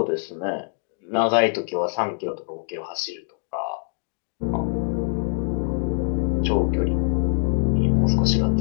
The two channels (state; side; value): silent; right; digital silence